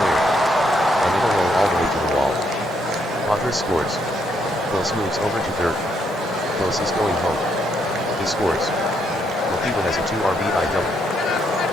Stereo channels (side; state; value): both; normal; correlation 0.75